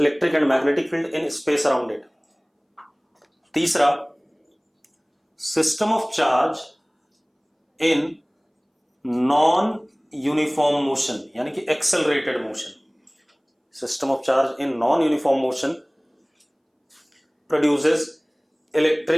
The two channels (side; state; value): both; identical; correlation 1.00